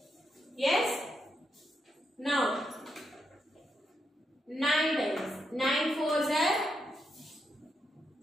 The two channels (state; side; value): normal; both; correlation 0.82